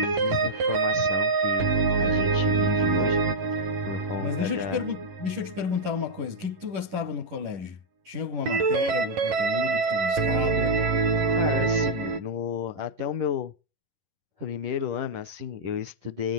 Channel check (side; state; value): left; late; 11 ms